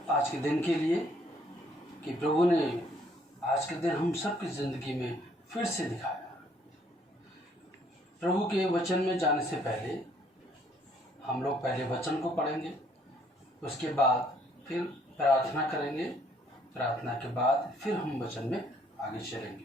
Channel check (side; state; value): both; normal; correlation 0.65